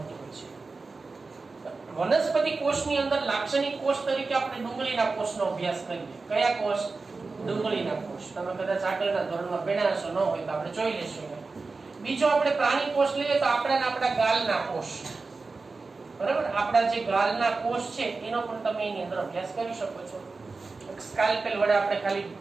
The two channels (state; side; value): quieter; left; 4.0 dB